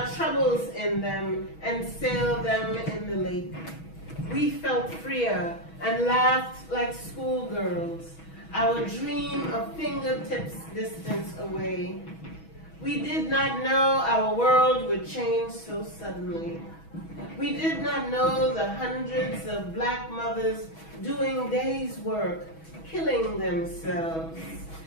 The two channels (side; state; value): right; late; 6.2 ms